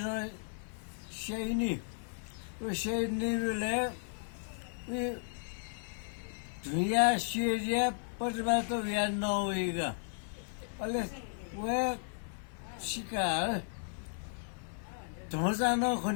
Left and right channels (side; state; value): right; silent; 54 dB below the other